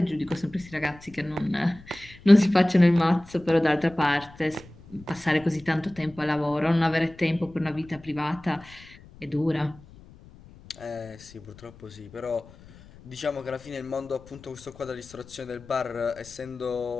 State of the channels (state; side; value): noise; left; rumble, 22 dB below the sound